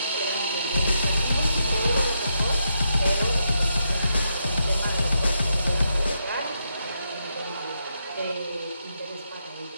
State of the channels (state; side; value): inverted; both; correlation -0.81